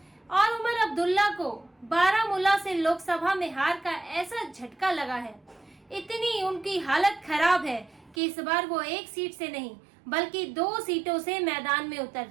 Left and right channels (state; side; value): drops out; left; at 8.2 s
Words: और उमर अब्दुल्ला को बारामूला से लोकसभा में हार का ऐसा झटका लगा है, इतनी उनकी हालत खराब है कि इस बार वो 1 सीट से नहीं बल्कि 2 सीटों से मैदान में उतर